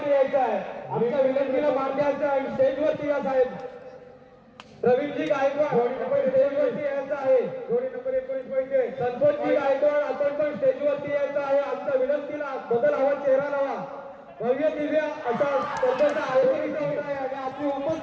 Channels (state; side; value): identical; both; correlation 1.00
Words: यायचं आहे आमच्या विनंतीला मान द्यायचं आहे स्टेजवरती या साहेब रवींद्रजी गायकवाड आपण स्टेजवरती यायचं आहे जोडी नंबर 19 पैसे संतोषजी गायकवाड आपण पण स्टेजवरती यायचं आहे आमच्या विनंतीला बदल हवा चेहरा लावा भव्य दिव्य असा स्पर्धेचा आयोजन इथं होत आहे आणि आपली